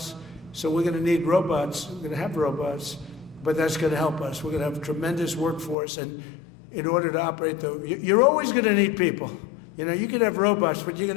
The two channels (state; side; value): drops out; right; at 5.8 s